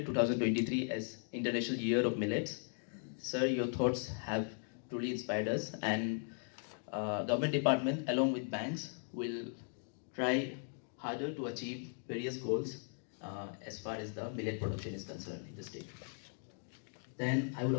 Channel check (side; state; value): right; silent; 52 dB below the other